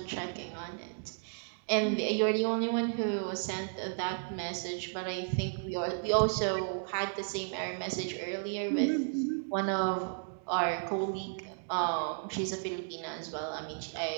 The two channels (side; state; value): left; silent; digital silence